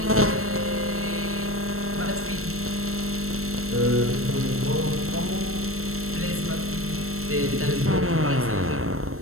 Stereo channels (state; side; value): late; left; 0.63 ms